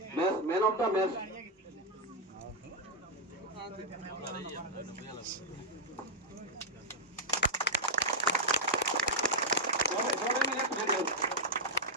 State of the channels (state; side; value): normal; both; correlation -0.01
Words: of the match